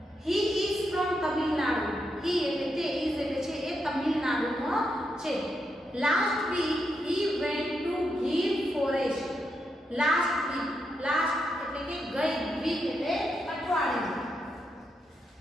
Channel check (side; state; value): both; normal; correlation 0.83